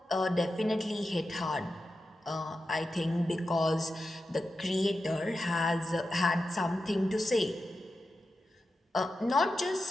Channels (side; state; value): both; normal; correlation 0.91